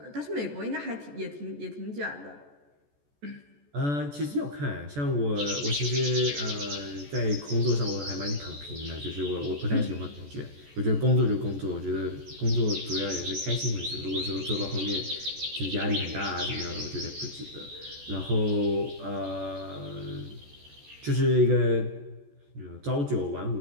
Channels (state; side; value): late; left; 14 ms